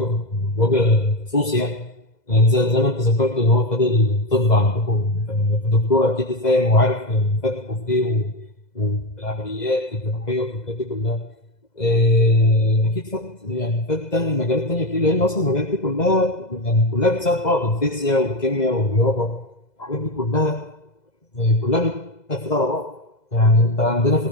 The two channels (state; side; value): late; right; 2.0 ms